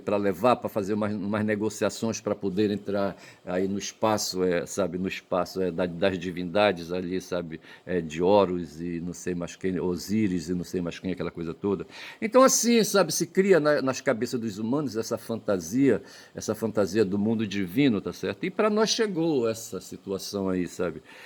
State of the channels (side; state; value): both; identical; correlation 1.00